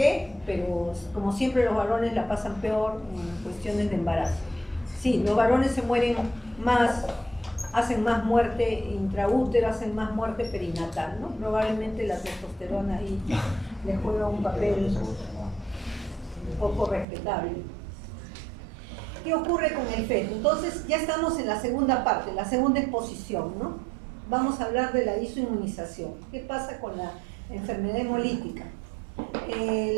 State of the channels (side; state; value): left; drops out; at 17.1 s